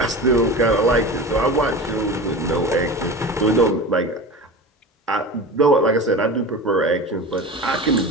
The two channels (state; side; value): normal; both; correlation 0.31